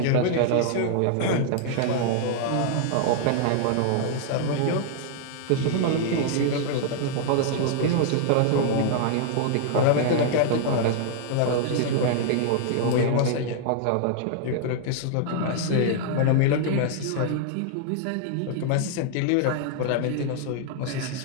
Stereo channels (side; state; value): both; different; correlation -0.01